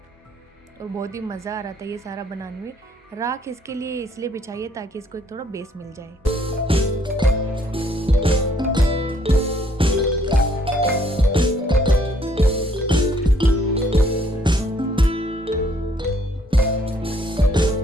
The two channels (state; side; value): normal; both; correlation 0.65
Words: और बहुत ही मज़ा आ रहा था ये सारा बनाने में। राख इसके लिए इसलिए बिछाइए ताकि इसको एक थोड़ा बेस मिल जाए।